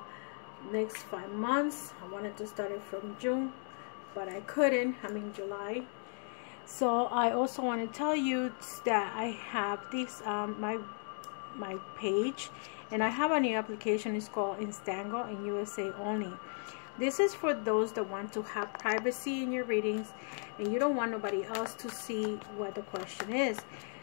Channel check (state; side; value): silent; right; 54 dB below the other